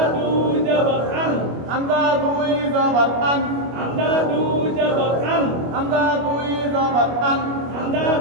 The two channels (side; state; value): left; late; 25 ms